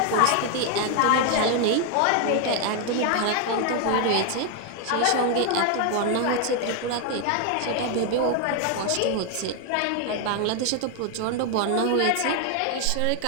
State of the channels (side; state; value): both; different; correlation 0.01